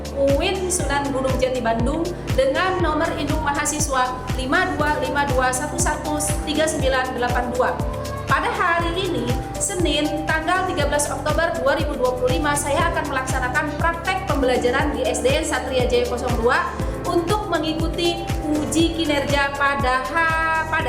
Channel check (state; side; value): identical; both; correlation 1.00